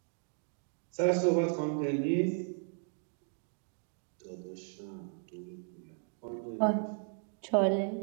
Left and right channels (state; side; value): silent; left; 54 dB below the other